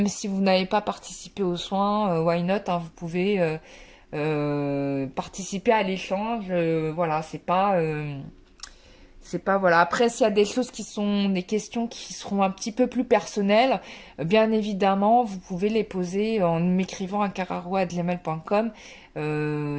si vous n'avez pas participé aux soins, why not, hein, vous pouvez... participer à l'échange, voilà, c'est pas voilà. Après, s'il y a des choses des questions qui seront un petit peu plus personnelles, bien évidemment, vous pouvez les poser en m'écrivant à cararo@gmail.com.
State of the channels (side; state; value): both; identical; correlation 1.00